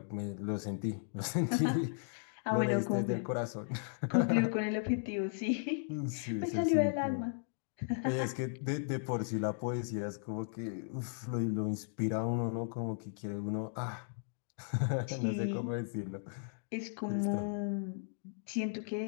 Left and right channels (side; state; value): right; silent; digital silence